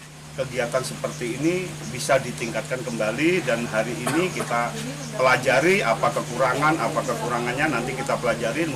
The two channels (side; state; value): both; identical; correlation 1.00